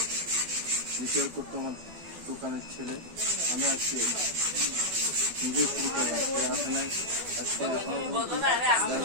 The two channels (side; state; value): left; late; 12 ms